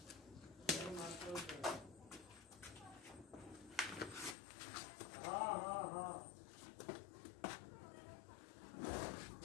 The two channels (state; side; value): drops out; right; at 4.4 s